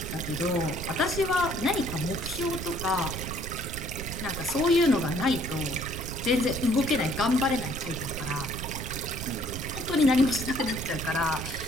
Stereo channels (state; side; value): noise; right; rumble, 7 dB below the sound